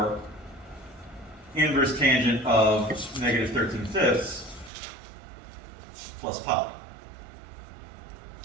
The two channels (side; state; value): left; drops out; at 4.7 s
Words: inverse tangent of negative 13/5 plus pi.